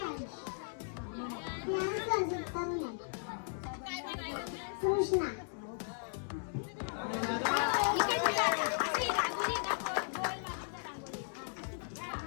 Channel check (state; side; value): silent; right; digital silence